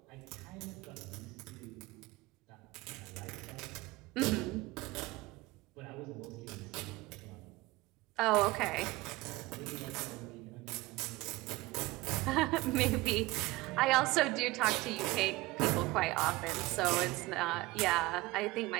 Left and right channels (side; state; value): left; quieter; 20.5 dB